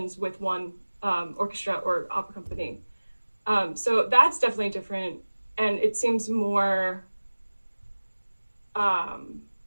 with one orchestra or opera company. So that's definitely different, and it seems more.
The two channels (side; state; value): both; inverted; correlation -1.00